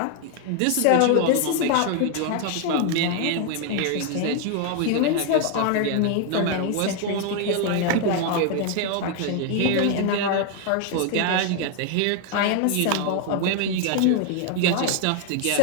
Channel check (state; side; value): different; both; correlation 0.01